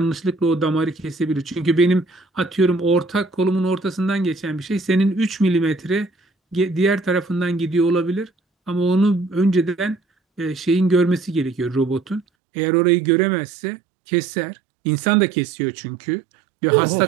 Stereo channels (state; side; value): drops out; left; at 12.2 s